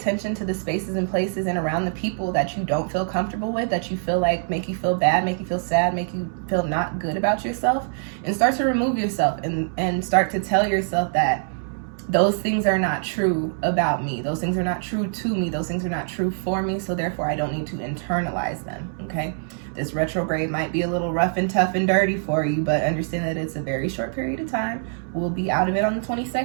to the spaces and places and around the people that you don't feel comfortable with, that you feel like make you feel bad, make you feel sad, make you feel not good about yourself, and start to remove yourself and start to tell yourself that those things are not true about me. Those things are not true to me. Those things are not true for me. So therefore, I don't need to internalize them, okay? This retrograde might be a little rough and tough and dirty for you, but understand that it's a very short period of time. We'll be out of it on the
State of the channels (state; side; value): silent; left; digital silence